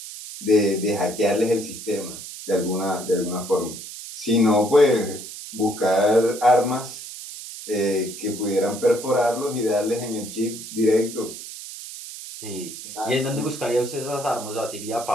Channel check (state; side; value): noise; right; hiss, 11 dB below the sound